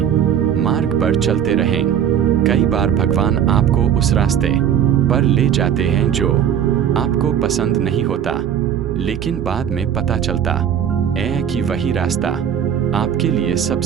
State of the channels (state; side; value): quieter; left; 9.1 dB